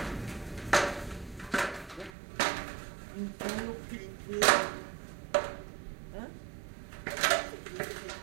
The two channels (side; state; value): left; drops out; at 2.1 s